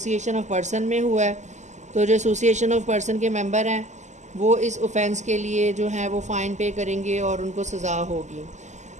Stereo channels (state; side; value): late; left; 0.34 ms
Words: ऑफ पर्सन में हुआ है तो जो एसोसिएशन ऑफ पर्सन के मेंबर हैं वो इस ऑफेंस के लिए जो है वो फ़ाइन पे करेंगे और उनको सज़ा होगी।